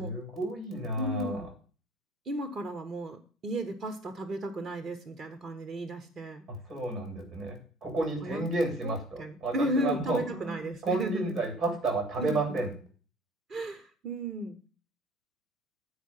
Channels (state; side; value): normal; both; correlation 0.48